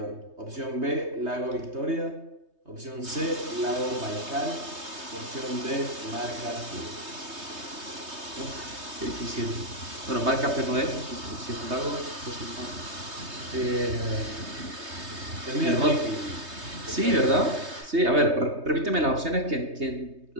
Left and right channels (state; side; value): late; left; 3.2 ms